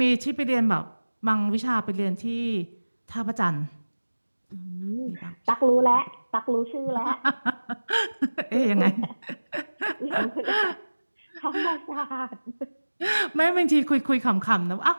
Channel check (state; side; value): inverted; both; correlation -1.00